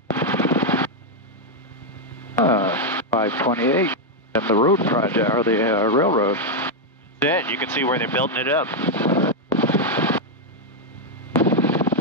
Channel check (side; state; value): both; normal; correlation 0.00